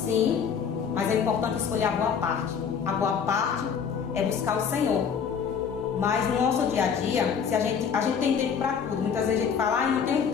mas é importante escolher a boa parte. A boa parte é buscar o Senhor. Mas no nosso dia a dia, se a gente tem tempo para tudo. Muitas vezes a gente fala, não tenho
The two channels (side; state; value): right; quieter; 6.9 dB